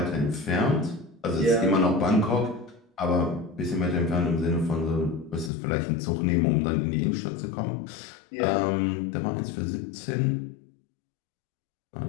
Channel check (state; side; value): drops out; right; at 5.5 s